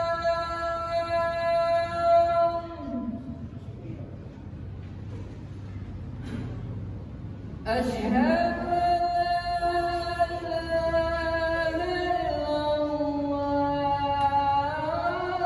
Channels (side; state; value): both; identical; correlation 1.00